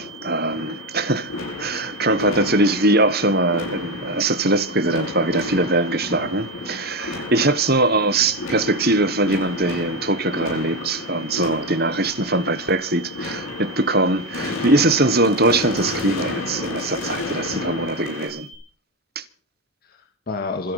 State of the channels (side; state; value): both; normal; correlation 0.13